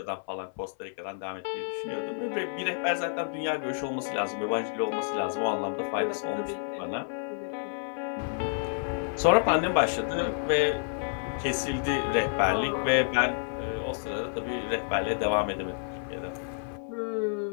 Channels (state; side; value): silent; right; 56 dB below the other